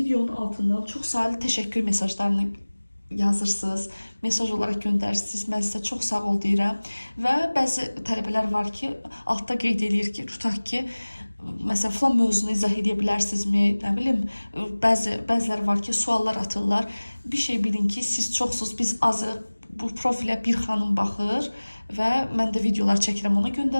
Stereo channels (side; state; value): both; inverted; correlation -1.00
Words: altından çox sayılı təşəkkür mesajlarını yazırsınız, mesaj olaraq göndərirsiniz. Mən sizə çox sağ ol deyirəm. Və bəzi tələbələr var ki, altda qeyd edir ki, tutaq ki, məsələn, falan mövzunu izah edə bilərsinizmi? Nə bilim, bəziləri var ki, suallar atırlar. Bir şey bilin ki, siz çoxsuz, biz azıq. Bu profilə bir xanım baxır və mən də videolar çəkirəm, ona